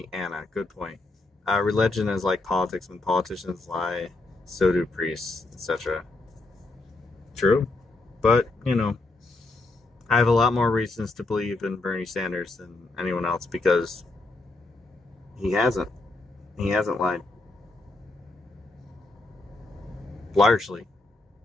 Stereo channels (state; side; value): quieter; right; 3.1 dB